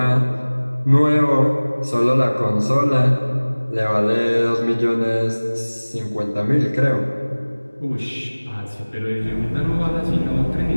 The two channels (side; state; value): both; inverted; correlation -1.00